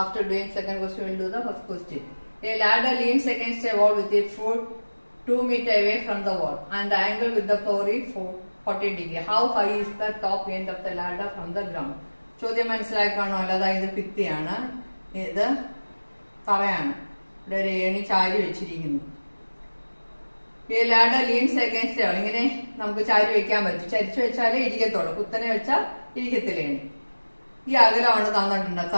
doing second question, we will do the first question. A ladder leans against a wall with its foot 2 meters away from the wall and the angle with the floor is 40 degree. How high is the top end of the ladder from the ground? ചോദ്യം മനസ്സിലാക്കാണോ? അതായത് ഭിത്തിയാണ്, ഇത് തറയാണ്, ഇവിടെ ഒരു ഏണി ചാരി വെച്ചിരിക്കുന്നു. ഈ ladder leans against ആണ്, ഇങ്ങനെ നമുക്ക് ചാരി വെക്കാൻ പറ്റും. ചരിച്ചു വെച്ചാലേ ഇരിക്കത്തുള്ളൂ, കുത്തനെ വെച്ചാൽ ഇരിക്കത്തില്ലേണി. ഈ അകലമാണ് തന്നിട്ടുണ്ട്,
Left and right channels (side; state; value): both; inverted; correlation -1.00